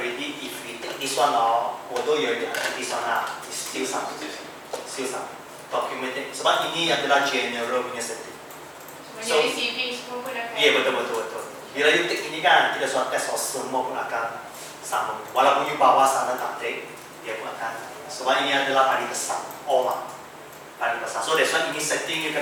if we take this one now, although you already untick this one lah, it's still some. Documented. Sebab ini adalah general punya setting. Sebenarnya receiving semua pun akan. Ya, betul. Bila you take ini kan, kita sudah test semua pun akan sama. Walaupun you bawa sana tak take, dia pun akan. Sebab ini adalah paling besar, all lah. Paling besar. So that's why ini setting you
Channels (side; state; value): both; identical; correlation 1.00